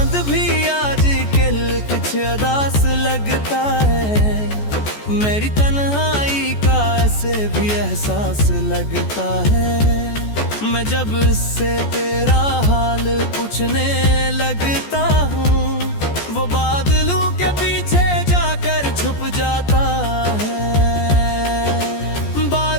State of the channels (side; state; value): right; late; 14 ms